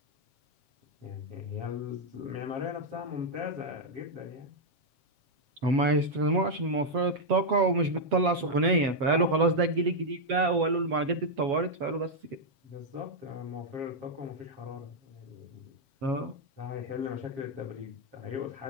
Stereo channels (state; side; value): late; left; 7.3 ms